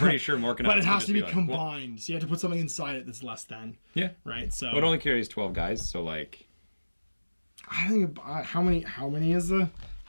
sure Morkanauts... But it has to be combined, so you have to put something inside it that's less than. Yeah. Right, so... Well, it only carries 12 guys, so like... I think... How many is a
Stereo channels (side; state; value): both; inverted; correlation -1.00